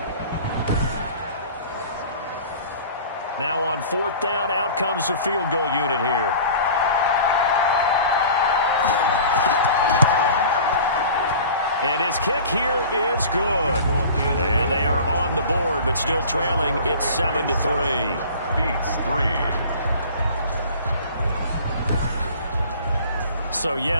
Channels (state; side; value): inverted; both; correlation -0.42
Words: Now on 4th down, out comes the field goal unit here. And his kick here is good. And they are on the board, but still trailing. It's 7-3. Beats 3. So,